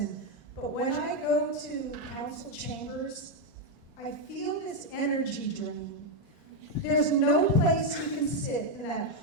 but when I go to council chambers, I feel this energy drain. There's no place you can sit in that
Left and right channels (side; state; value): both; normal; correlation 0.03